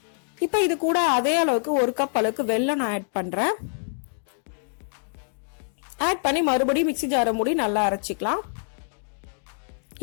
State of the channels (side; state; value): right; silent; digital silence